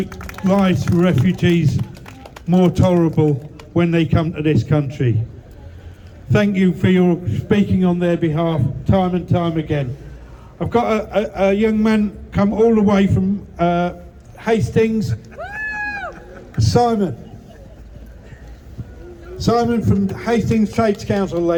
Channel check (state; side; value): identical; both; correlation 1.00